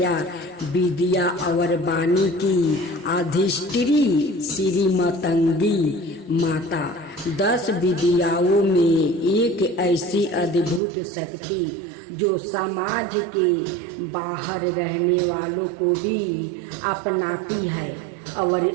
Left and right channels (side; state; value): left; drops out; at 10.8 s